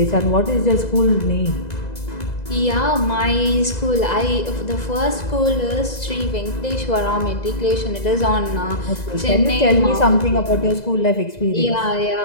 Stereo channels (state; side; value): late; right; 2.0 ms